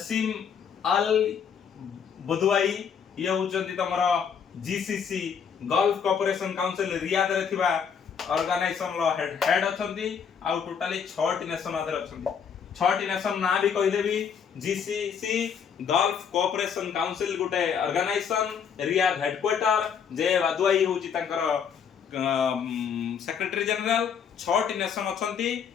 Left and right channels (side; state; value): right; quieter; 7.1 dB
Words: Al Budaiwi ये होचंती तमरा GCC Gulf cooperation council Riyadh रे थिबा ऑर्गेनाइजेशन लो हेड अछंती आ टोटली 6 टी नेशन अदर अछंती 6 टी नेशन ना भी कहि देबी जीसीसी गल्फ कोऑपरेशन काउंसिल गुटे ऑर्गेनाइजेशन रियाद हेडक्वार्टर जे बदवाई होची तंकर सेक्रेटरी जनरल 6 टी नेशन अछंती